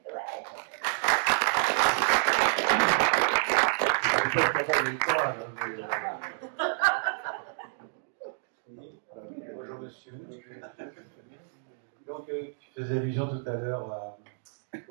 Bonjour monsieur. Donc tu faisais allusion tout à l'heure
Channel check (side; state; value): left; silent; digital silence